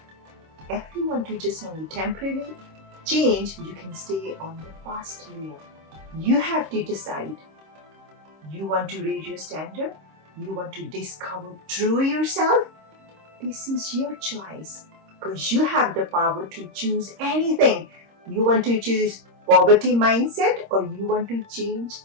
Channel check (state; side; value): late; left; 26 ms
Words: If you want to just only temporarily change, you can stay on the fast layer. You have to decide. You want to raise your standard? You want to discover true yourself? This is your choice because you have the power to choose anything. You want to choose poverty mindset or you want to change?